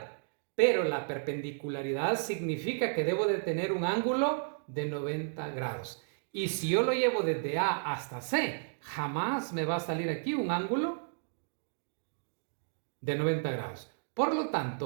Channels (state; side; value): silent; left; digital silence